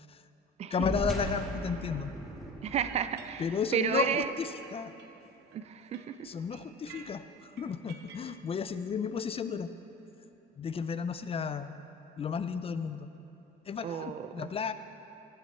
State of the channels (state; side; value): normal; both; correlation 0.35